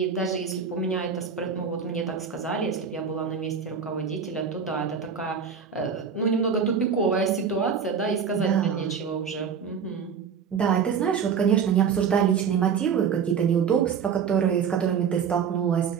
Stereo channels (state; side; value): quieter; left; 6.8 dB